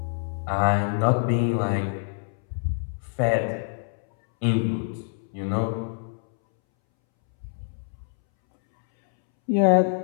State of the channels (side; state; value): right; silent; 61 dB below the other